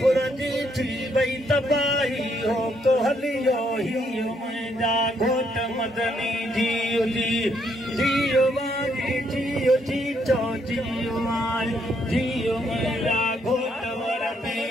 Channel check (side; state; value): both; normal; correlation 0.73